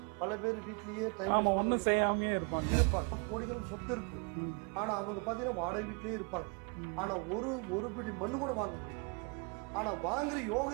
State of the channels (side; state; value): left; quieter; 35.1 dB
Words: பல பேர் வீட்லயே டைம் ஒன்றும் செய்யாம இருப்பாங்க. கோடிகளுக்கு சொத்து இருக்கும், ஆனா அவங்க பாத்தீங்கன்னா வாடகை வீட்லயே இருப்பாங்க. ஆனா ஒரு பிடி மண்ணு கூட வாங்க முடியும். ஆனா வாங்குற